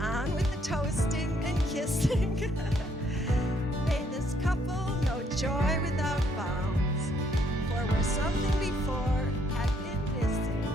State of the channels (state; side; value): normal; both; correlation 0.69